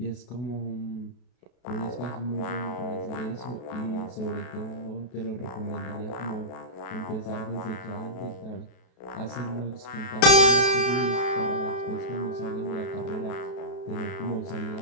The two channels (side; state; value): right; late; 33 ms